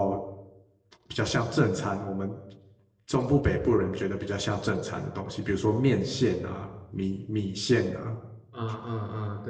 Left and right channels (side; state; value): both; identical; correlation 1.00